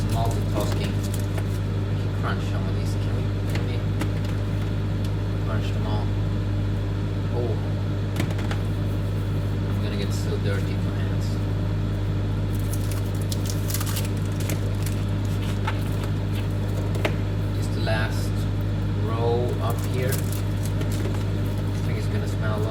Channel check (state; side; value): identical; both; correlation 1.00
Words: multitasking. We can crunch some of these. Can we crunch them all? Oh, I'm gonna get so dirty in my hands. Last row up here. I think it's gonna smell a